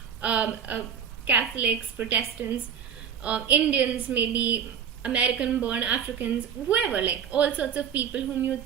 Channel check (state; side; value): quieter; left; 7.9 dB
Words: Catholics, Protestants, Indians, maybe American-born Africans, whoever, like all sorts of people whom you